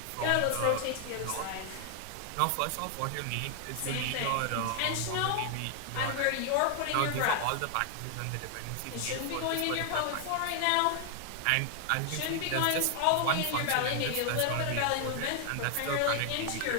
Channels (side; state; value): both; different; correlation 0.00